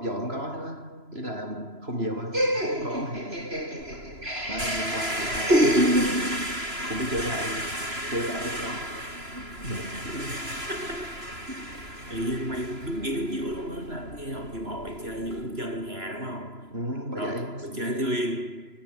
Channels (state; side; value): late; left; 3.0 ms